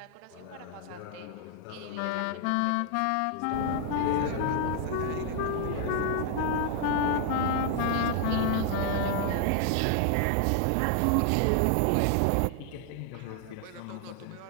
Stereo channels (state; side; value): different; both; correlation 0.00